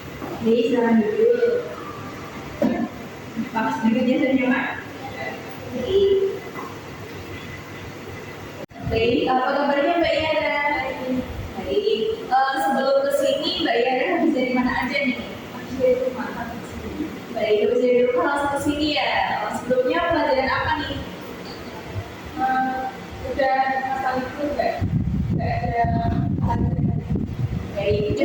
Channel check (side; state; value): both; identical; correlation 1.00